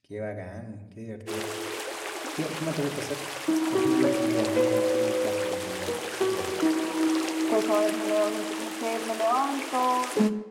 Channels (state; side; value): identical; both; correlation 1.00